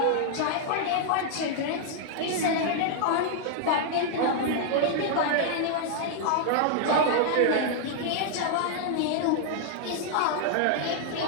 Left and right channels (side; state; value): both; different; correlation -0.01